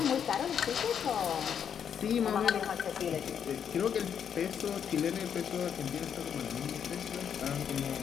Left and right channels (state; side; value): quieter; right; 8.1 dB